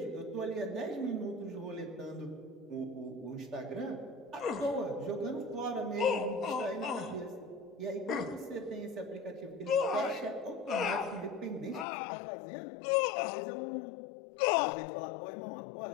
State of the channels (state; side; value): drops out; right; at 11.9 s